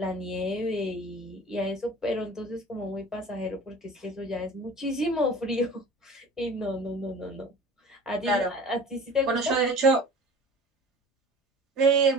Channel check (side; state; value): both; normal; correlation 0.41